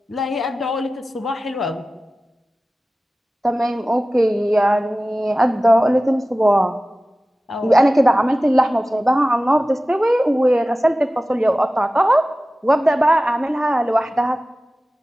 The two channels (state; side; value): normal; both; correlation 0.96